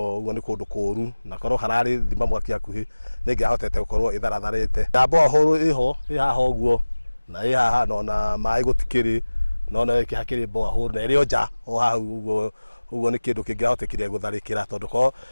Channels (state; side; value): inverted; both; correlation -1.00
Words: ni kundu kuru na korwo harari thima mwaki akuhi ningihotete gukorwo itharatharite ndambo huru iho ihaha uguo na ihaha na mai gutikiri no ikihakiri mboa huru na irio nja o hau uguo ni kindu kingihotekire gutharikira tondu ko